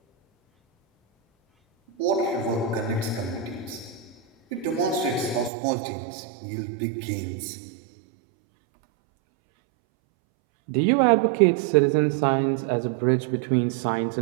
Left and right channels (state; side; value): drops out; left; at 5.5 s